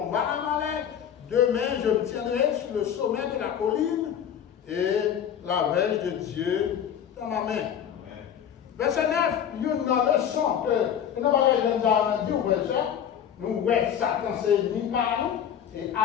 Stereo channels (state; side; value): quieter; right; 9.0 dB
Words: Amalek. Demain, je me tiendrai sur le sommet de la colline et la verge de Dieu dans ma main. Verset 9, il y a une leçon que nous avons dit au verset, nous voyons Satan c'est ennemi par nous et